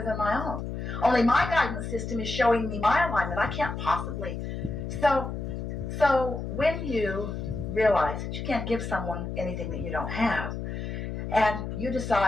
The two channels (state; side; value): noise; left; hum, 5 dB below the sound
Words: than my own. Only my guidance system is showing me my alignment. I can't possibly. So when you realize that you can't give someone anything that you don't have, and you